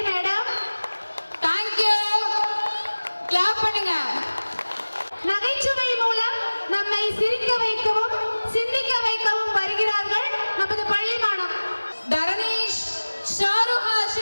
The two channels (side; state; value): both; inverted; correlation -1.00